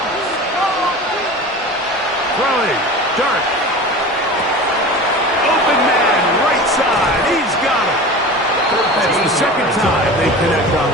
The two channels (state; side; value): normal; both; correlation 0.34